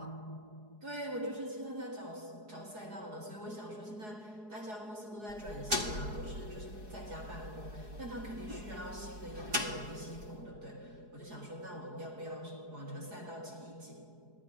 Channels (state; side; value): late; left; 4.7 ms